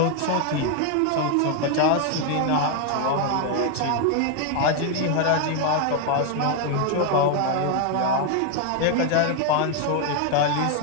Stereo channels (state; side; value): different; both; correlation 0.01